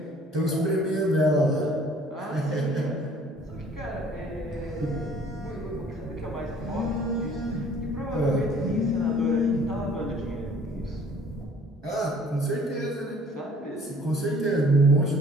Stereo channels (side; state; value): both; normal; correlation 0.54